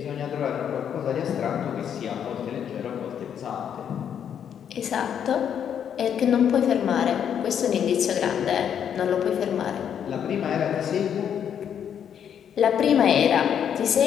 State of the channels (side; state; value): right; quieter; 8.6 dB